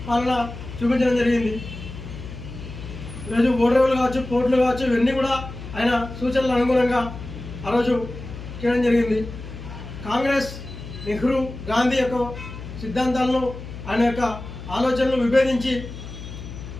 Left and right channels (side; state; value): left; noise; hum, 11 dB below the sound